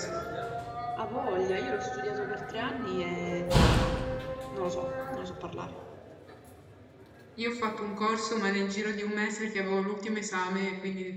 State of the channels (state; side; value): identical; both; correlation 1.00